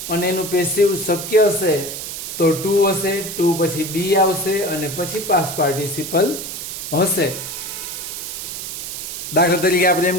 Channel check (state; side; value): noise; right; hiss, 7 dB below the sound